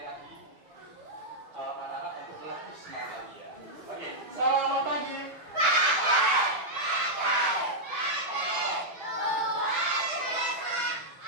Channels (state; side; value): late; left; 6.1 ms